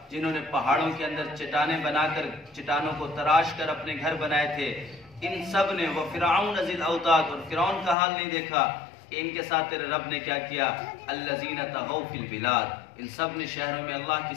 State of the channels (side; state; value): right; drops out; at 8.0 s